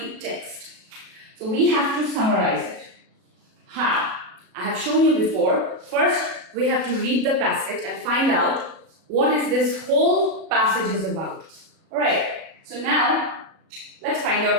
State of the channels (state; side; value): late; left; 37 ms